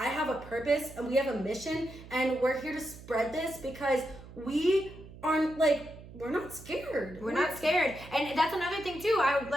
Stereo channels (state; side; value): noise; right; hum, 17 dB below the sound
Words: have a purpose and we have a mission, and we're here to spread this because we aren't like, we're not scared. We're not scared. And that's another thing too. I've